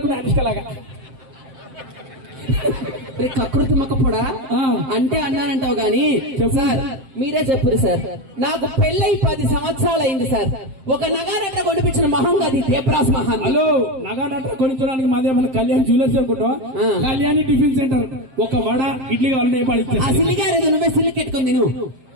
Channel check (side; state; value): left; late; 7.6 ms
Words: అనుష్కలాగా. కకృతి మక్కపోడా అంటే అన్నానంటావు గాని సార్, మీరే చెప్పురు సార్. నాకు పెళ్ళై 10 సంవత్సరాలు అయింది సార్. ఒక నగానట్ర కొనిపించిన మహంగా అది దేవరాజ్ మహాన్. హలో, నగానట్ర కొనించడానికి మాదేమన్నా కళ్యాణ్ జ్యువెలర్స్ అనుకుంటా? Kalyani tiffin centre. ఒక వడ ఇడ్లీ కావాలని సిల్లిగారు, నువ్వే సిల్లి కెట్టుకుంది నువ్వు.